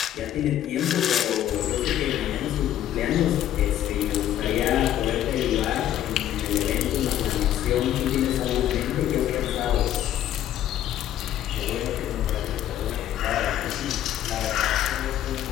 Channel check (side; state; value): right; quieter; 11.7 dB